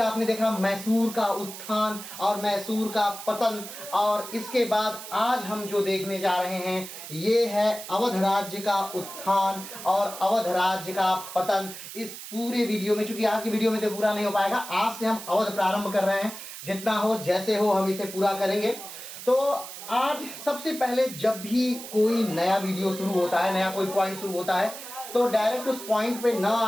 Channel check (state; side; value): noise; right; hiss, 11 dB below the sound